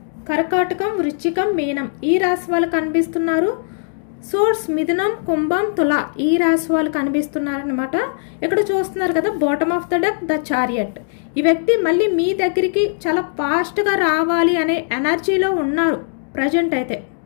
కర్కాటకం, వృశ్చికం, మీనం ఈ రాశి వాళ్ళు కనిపిస్తున్నారు. సోర్స్ మిథునం, కుంభం, తుల ఈ రాశి వాళ్ళు కనిపిస్తున్నారనమాట. ఇక్కడ చూస్తున్నారు కదా, bottom of the deck the chariot. ఈ వ్యక్తి మళ్ళీ మీ దగ్గరికి చాలా ఫాస్ట్గా రావాలి అనే ఎనర్జీలో ఉన్నారు ప్రజెంట్ అయితే.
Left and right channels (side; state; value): right; silent; digital silence